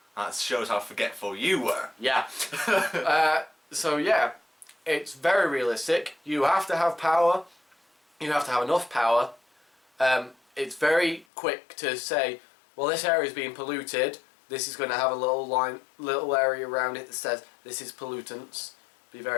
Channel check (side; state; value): right; drops out; at 11.2 s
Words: that shows how forgetful you were. Yeah. So yeah, it's very realistic. You have to have power. You have to have enough power. It's very quick to say, well, this area is being polluted. This is going to have a little area around it that says this is pollutants. Be